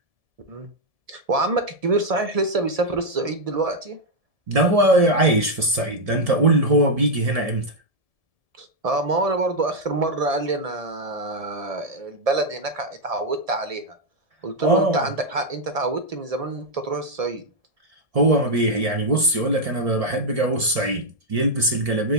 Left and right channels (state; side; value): late; left; 1.7 ms